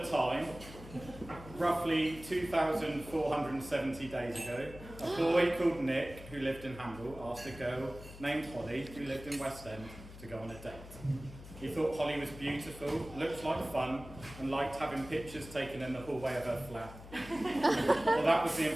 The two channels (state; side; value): noise; left; hum, 15 dB below the sound